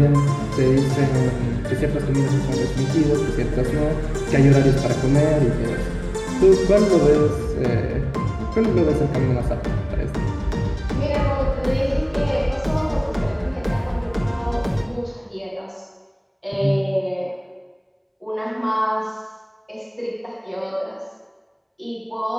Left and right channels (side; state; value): both; identical; correlation 1.00